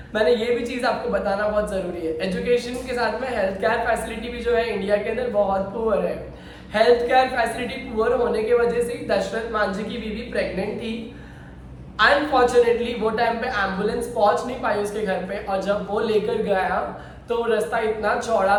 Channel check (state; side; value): identical; both; correlation 1.00